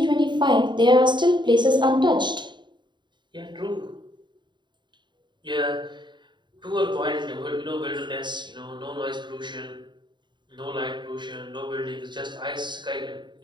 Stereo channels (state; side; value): late; left; 0.22 ms